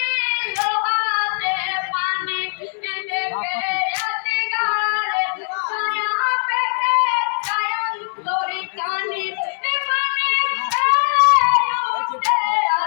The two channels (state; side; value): silent; right; 65 dB below the other